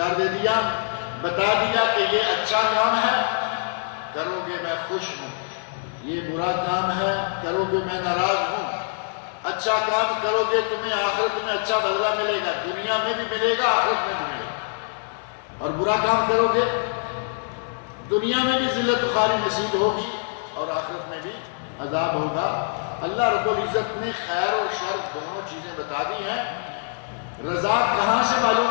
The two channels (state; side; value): silent; right; 62 dB below the other